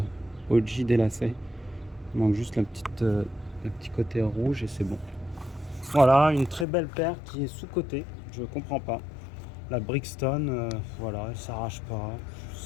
OG des lacets. Il manque juste le petit côté rouge et c'est bon. Voilà, une très belle paire qui est sous-cotée. Je comprends pas. La Brixton, voilà, elle s'arrache pas. Je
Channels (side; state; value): right; drops out; at 6.7 s